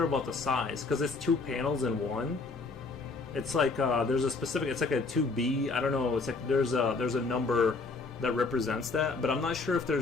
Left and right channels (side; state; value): right; quieter; 4.0 dB